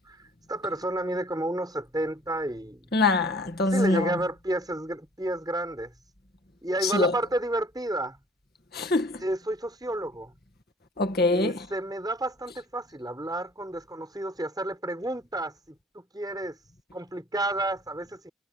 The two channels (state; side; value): normal; both; correlation 0.53